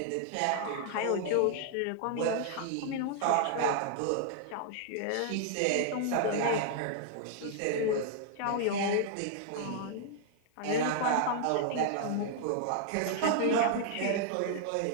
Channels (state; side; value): different; both; correlation -0.01